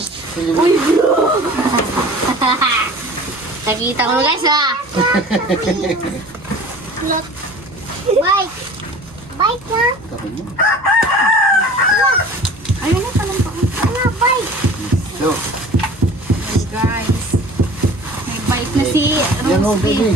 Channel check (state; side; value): normal; both; correlation 0.43